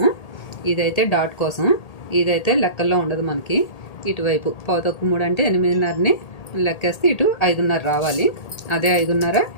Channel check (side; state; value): right; late; 1.8 ms